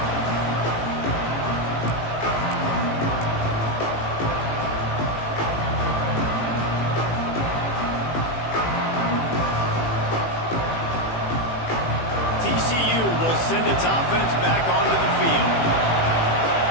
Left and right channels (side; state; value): right; late; 18 ms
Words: TCU will send its offense back onto the field.